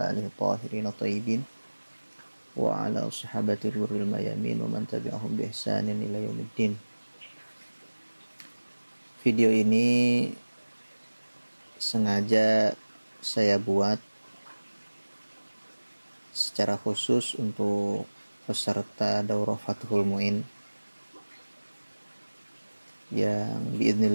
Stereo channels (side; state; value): both; inverted; correlation -1.00